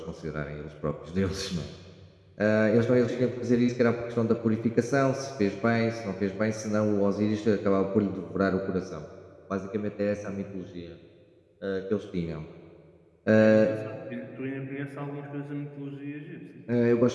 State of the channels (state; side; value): identical; both; correlation 1.00